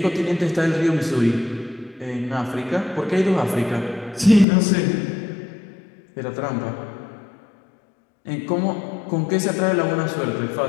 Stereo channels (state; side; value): drops out; right; at 4.5 s